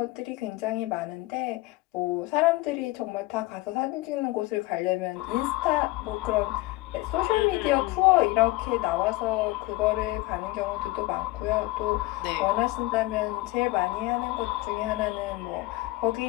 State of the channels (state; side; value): quieter; right; 20.0 dB